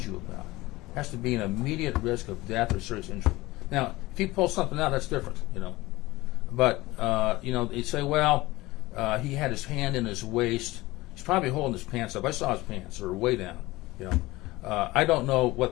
you about, has to be an immediate risk of death or serious injury. Now, if he pulls something out, that's different, But, they say, well, he had his hand in his waist. He's probably holding his pants up. I saw his pants, or way down, I don't know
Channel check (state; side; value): quieter; right; 19.7 dB